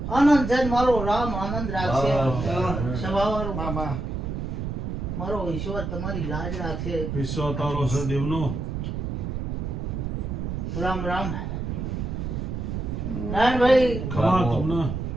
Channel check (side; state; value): right; noise; rumble, 3 dB below the sound